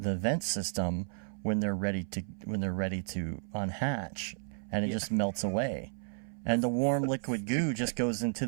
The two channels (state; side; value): silent; left; 56 dB below the other